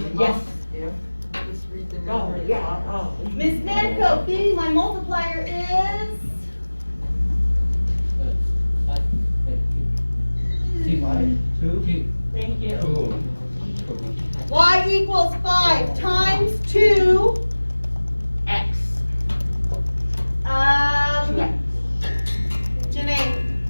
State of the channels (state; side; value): inverted; both; correlation -1.00